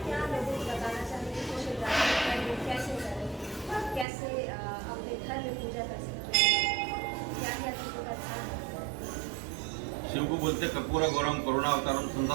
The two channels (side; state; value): left; drops out; at 4.0 s